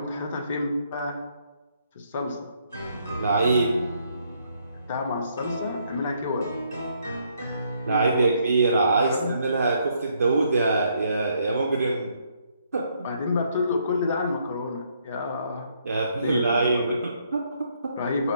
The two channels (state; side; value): inverted; both; correlation -0.71